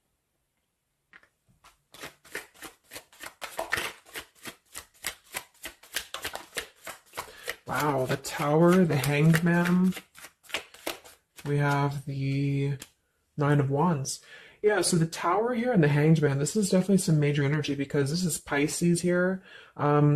Wow, the Tower, the Hanged Man. We have the Nine of Wands. Yeah, so the Tower here and the Hanged Man, this is definitely some major energy because this is Pisces here.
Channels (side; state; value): both; identical; correlation 1.00